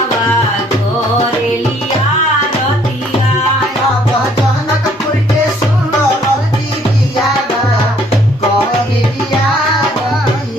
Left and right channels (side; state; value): both; normal; correlation 0.62